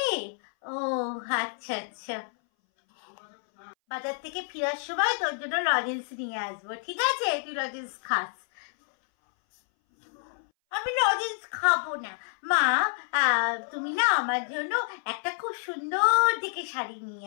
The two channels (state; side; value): silent; right; 59 dB below the other